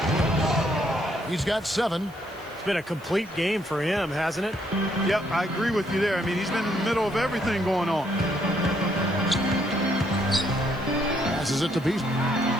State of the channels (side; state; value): right; noise; hiss, 26 dB below the sound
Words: He's got 7. It's been a complete game for him, hasn't it? Yep, I agree with you there. I mean, he's been in the middle of everything going on. Passes it to Beasley.